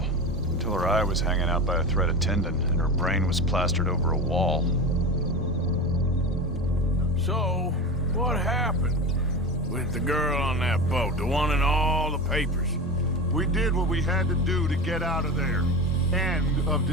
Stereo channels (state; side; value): normal; both; correlation 0.26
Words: until her eye was hanging out by a threaded tendon and her brain was plastered over a wall. So, what happened with the girl on that boat, the one in all the papers? We did what we had to do to get out of there. End of